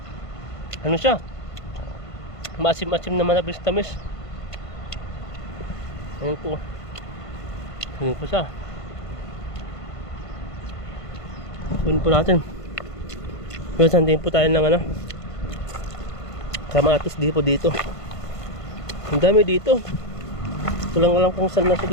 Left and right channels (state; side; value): late; right; 1.5 ms